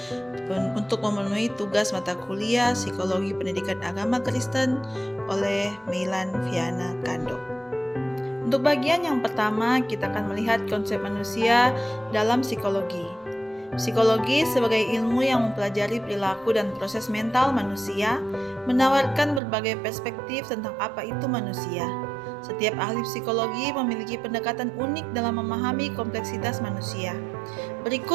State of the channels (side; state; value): left; drops out; at 19.4 s